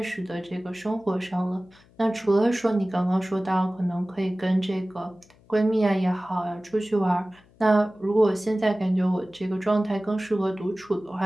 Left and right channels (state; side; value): noise; left; hum, 29 dB below the sound